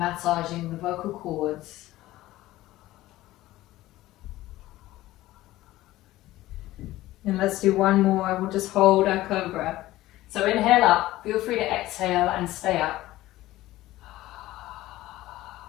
the vocal cords. And let's do one more. We'll just hold our cobra. So inhale up, feel free to exhale and stay up.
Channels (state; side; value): quieter; right; 16.4 dB